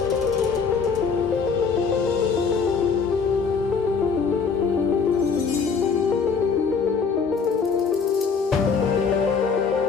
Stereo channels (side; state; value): right; quieter; 5.5 dB